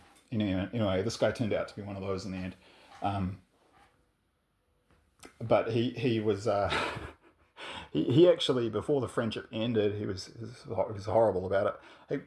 Anyway, this guy turned out to be one of those in the end. But he was he actually, before the friendship ended, he was horrible about it.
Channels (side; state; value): both; identical; correlation 1.00